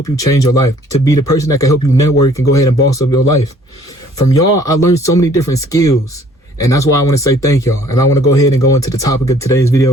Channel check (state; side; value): normal; both; correlation 0.57